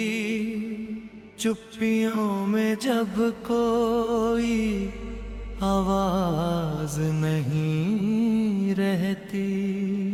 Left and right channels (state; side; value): identical; both; correlation 1.00